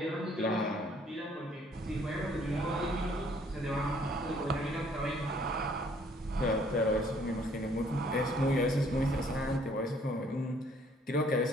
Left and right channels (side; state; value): both; normal; correlation 0.62